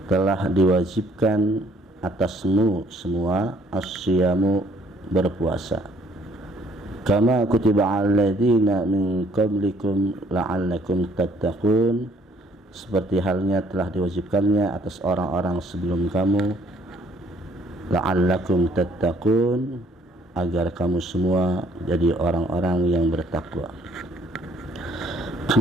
telah diwajibkan atasmu semua as-siyamu, berpuasa, kama kutiba 'alal ladzina min qablikum la'allakum tattaqun, seperti halnya telah diwajibkannya atas orang-orang sebelum kamu, la'allakum tattaqun, agar kamu semua jadi orang-orang yang bertakwa.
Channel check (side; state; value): both; normal; correlation 0.62